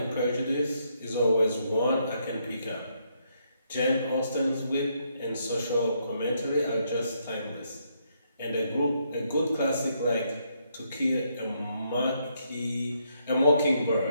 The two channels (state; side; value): inverted; both; correlation -0.75